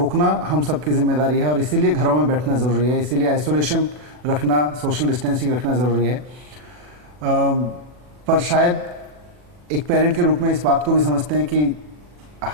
हम सबकी जिम्मेदारी है और इसीलिए घरों में बैठना ज़रूरी है, इसीलिए आइसोलेशन रखना, सोशल डिस्टेंसिंग रखना ज़रूरी है। पर शायद एक पेरेंट के रूप में इस बात को भी समझते हैं कि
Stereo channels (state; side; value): late; left; 40 ms